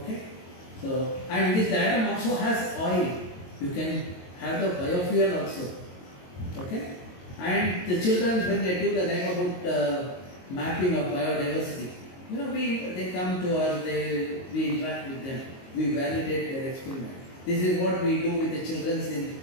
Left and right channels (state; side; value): late; right; 22 ms